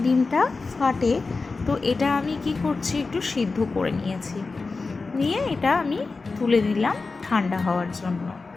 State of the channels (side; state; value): right; quieter; 4.0 dB